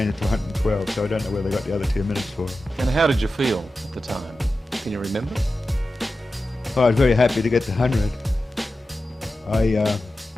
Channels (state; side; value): normal; both; correlation 0.93